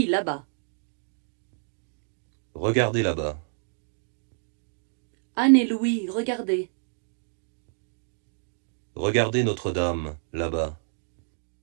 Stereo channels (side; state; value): left; silent; digital silence